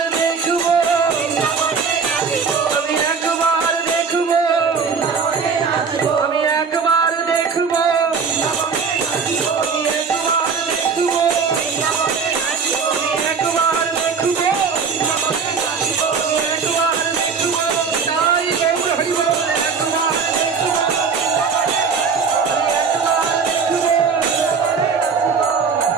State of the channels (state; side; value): quieter; left; 5.6 dB